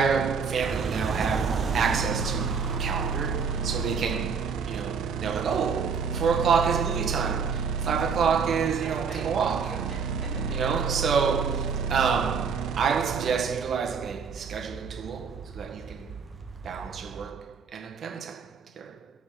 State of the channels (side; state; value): left; quieter; 5.8 dB